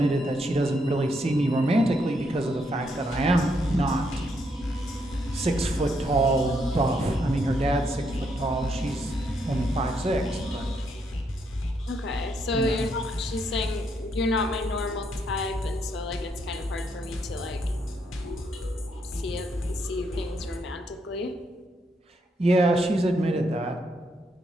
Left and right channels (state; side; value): normal; both; correlation 0.76